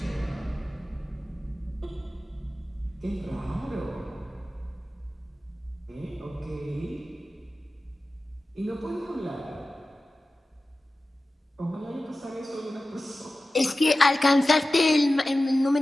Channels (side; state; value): both; normal; correlation 0.95